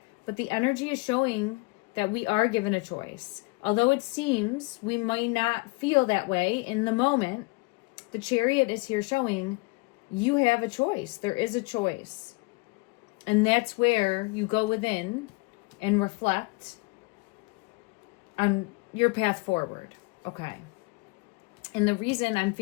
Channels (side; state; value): right; quieter; 26.2 dB